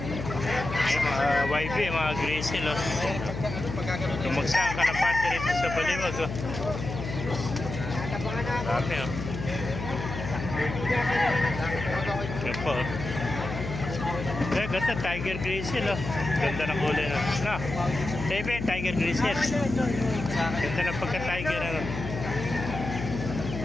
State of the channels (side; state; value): left; noise; hum, 7 dB below the sound